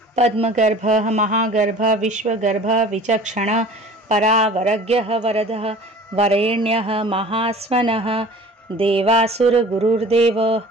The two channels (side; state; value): both; normal; correlation 0.44